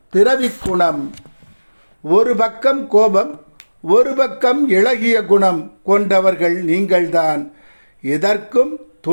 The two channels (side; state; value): both; inverted; correlation -1.00